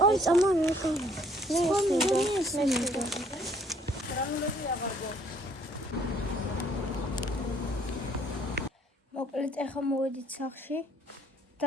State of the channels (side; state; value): both; normal; correlation 0.62